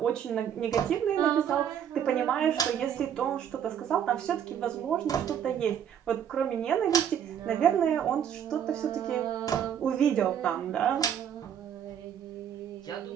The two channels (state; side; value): quieter; left; 9.0 dB